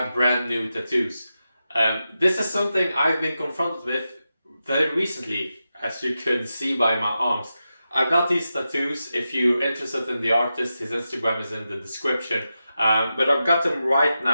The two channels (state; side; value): inverted; both; correlation -0.90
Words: brand new tattoos. This is something I've been confronted with very recently, as you can see by my arms. I got these tattoos. If you're interested in the artist, his Instagram is in the description. But I've got them right